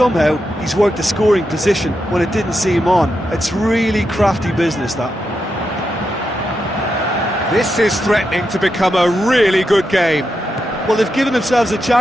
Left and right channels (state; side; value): normal; both; correlation 0.86